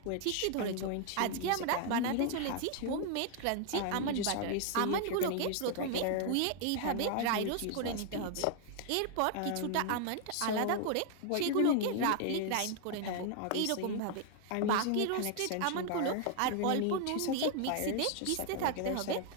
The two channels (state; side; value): different; both; correlation 0.00